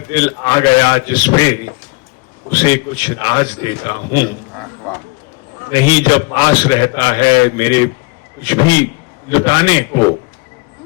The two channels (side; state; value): right; quieter; 27.8 dB